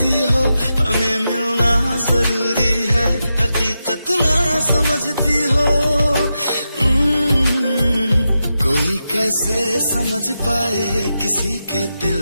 हो, हमें मिलना जरूरी है हकीकत ना समझती हो। कोई कैसे समझ पाए किसी के दिल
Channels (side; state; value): both; inverted; correlation -0.88